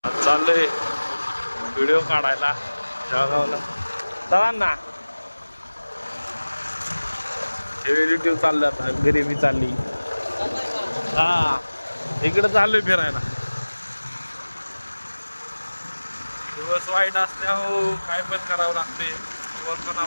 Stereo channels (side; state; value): both; inverted; correlation -1.00